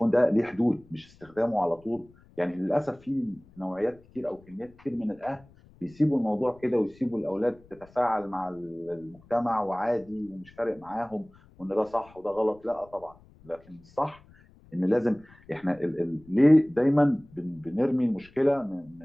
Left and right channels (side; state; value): left; noise; rumble, 26 dB below the sound